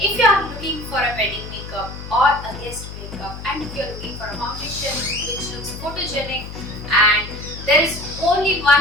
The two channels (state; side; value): noise; left; hum, 11 dB below the sound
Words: you are looking for a wedding makeup or a guest makeup and if you are looking for a foundation which looks photogenic, and there is only